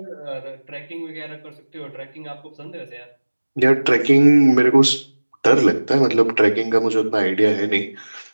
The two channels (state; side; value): inverted; both; correlation -1.00